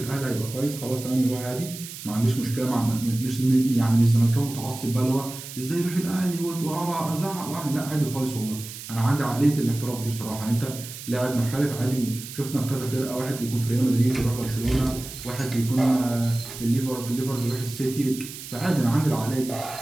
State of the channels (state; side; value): noise; right; hiss, 12 dB below the sound